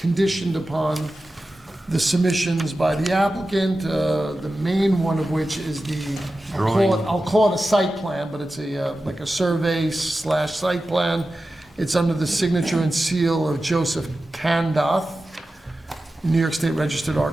upon the submissions by the applicant, the main one of which is I'll call it a site plan, but it's like a survey / site plan. It's under the signature and seal of Joseph Kandoth, New York State Registered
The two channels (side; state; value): both; normal; correlation 0.93